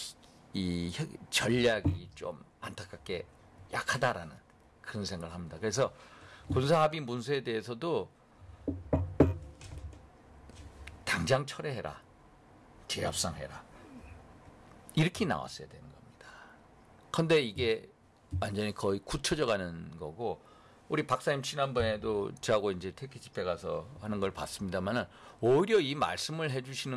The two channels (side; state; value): both; identical; correlation 1.00